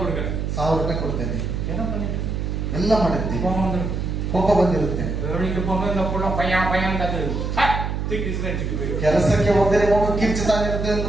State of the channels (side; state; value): right; noise; hum, 2 dB below the sound